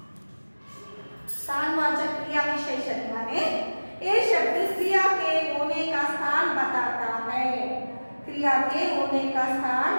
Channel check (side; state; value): both; inverted; correlation -1.00